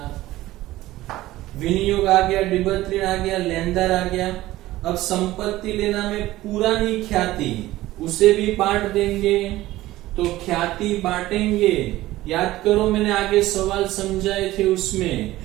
विनियोग आ गया, डिबत ऋण आ गया, लेनदार आ गया। अब संपत्ति लेना में पुरानी ख्याति, उसे भी बांट देंगे। तो ख्याति बांटेंगे, याद करो मैंने आगे सवाल समझाए थे, उसमें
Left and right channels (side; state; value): left; quieter; 16.5 dB